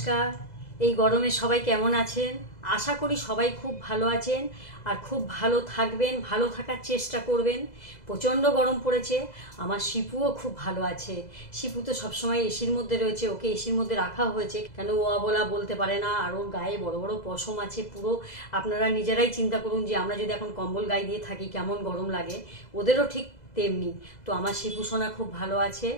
এই গরমে সবাই কেমন আছেন? আশা করি সবাই খুব ভালো আছেন আর খুব ভালো থাকবেন, ভালো থাকার চেষ্টা করবেন। প্রচণ্ড গরম পড়েছে। আমার শিপুও খুব ভালো আছে। শিপু তো সবসময় এসির মধ্যে রয়েছে, ওকে এসির মধ্যে রাখা হয়েছে কেন ও বলা বলতে পারে না, আর ওর গায়ে বড় বড় পশম আছে পুরো। আপনারা নিজেরাই চিন্তা করুন যে আমরা যদি এখন কম্বল গায়ে দিয়ে থাকি কেমন গরম লাগে, ওদেরও ঠিক তেমনি। তো আমার শিপু সোনা খুব ভালো আছে।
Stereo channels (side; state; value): right; late; 2.0 ms